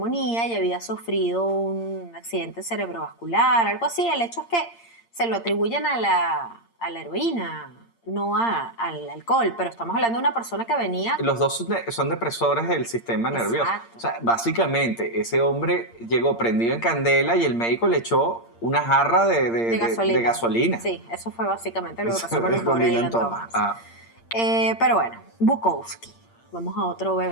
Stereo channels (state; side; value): late; right; 8.7 ms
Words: y había sufrido un accidente cerebrovascular, algo así. El hecho es que se lo atribuyen a la heroína, no al alcohol, pero estamos hablando de una persona que venía... Los dos son depresores del sistema nervioso. Exacto. O sea, básicamente, ese hombre llegó prendido en candela y el médico le echó una jarra de gasolina. Sí, eso fue básicamente lo que pasó con el Con pobre Dylan Dylan Thomas. Ah, Pero bueno, Bukowski. Vamos a otro